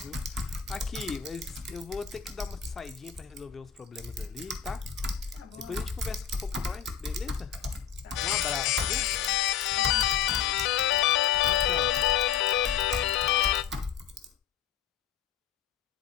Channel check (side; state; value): right; quieter; 9.0 dB